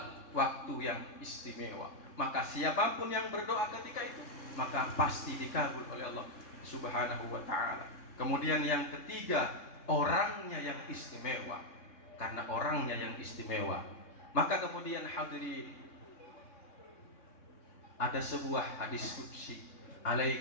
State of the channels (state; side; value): late; right; 3.6 ms